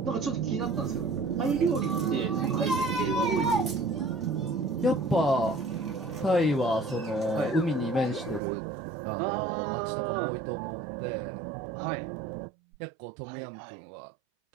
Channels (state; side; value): drops out; left; at 8.4 s